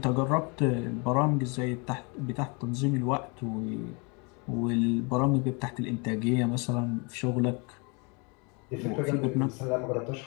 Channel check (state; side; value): quieter; right; 31.7 dB